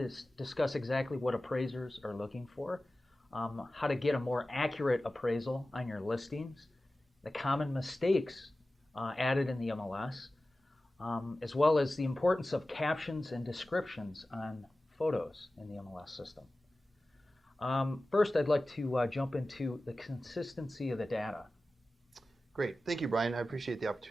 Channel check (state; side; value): normal; both; correlation 0.95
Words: discuss exactly what appraisers are looking for, how to get a more accurate appraisal on your listings, the common mistakes added in the MLS, as well as the importance of captions and descriptions on photos in the MLS system. First, I'd like to jump into the consistency of the data. Great. Thank you, Brian. I appreciate the